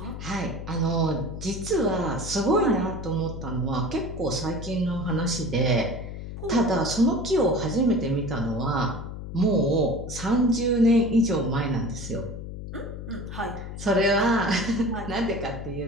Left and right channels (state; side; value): noise; left; hum, 9 dB below the sound